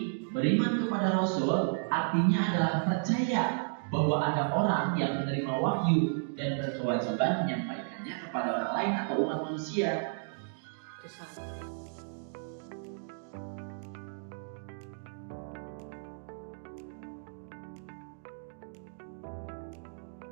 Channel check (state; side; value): silent; left; digital silence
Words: beriman kepada Rasul artinya adalah percaya bahwa ada orang yang menerima wahyu dan berkewajiban menyampaikannya kepada orang lain atau umat manusia.